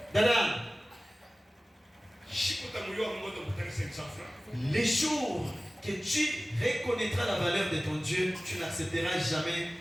Dada. Les jours que tu reconnaîtras la valeur de ton Dieu, tu n'accepteras jamais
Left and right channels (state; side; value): normal; both; correlation 0.97